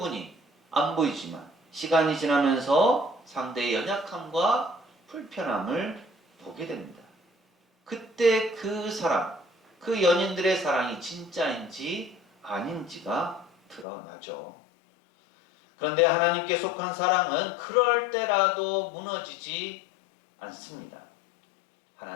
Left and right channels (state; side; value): drops out; right; at 13.9 s